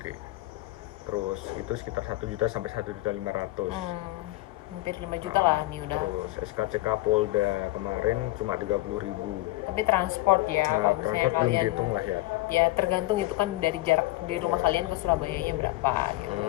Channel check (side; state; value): right; quieter; 19.1 dB